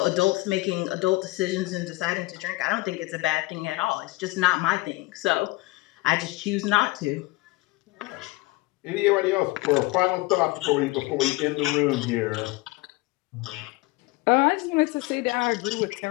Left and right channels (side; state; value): right; quieter; 21.3 dB